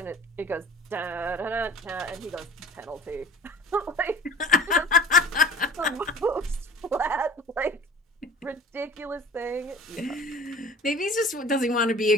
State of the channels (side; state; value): both; normal; correlation 0.43